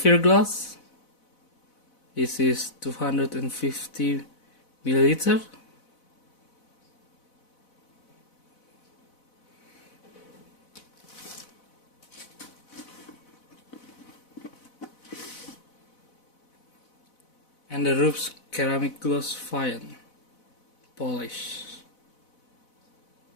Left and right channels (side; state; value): right; late; 4.0 ms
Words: glass. This is 250 milliliter. And the Rupes ceramic gloss fine polish.